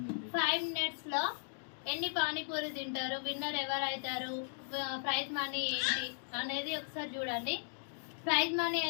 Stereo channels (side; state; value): right; silent; digital silence